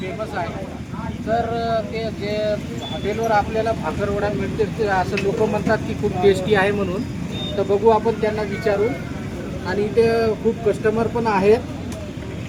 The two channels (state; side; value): identical; both; correlation 1.00